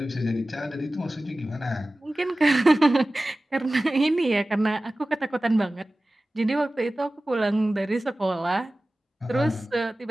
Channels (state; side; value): normal; both; correlation 0.96